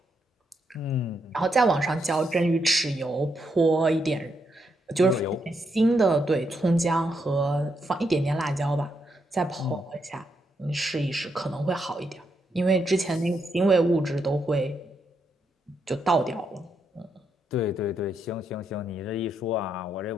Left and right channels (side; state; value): both; normal; correlation 0.80